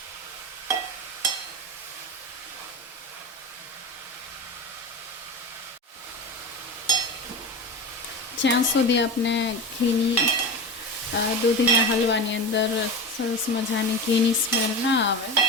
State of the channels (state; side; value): normal; both; correlation 0.25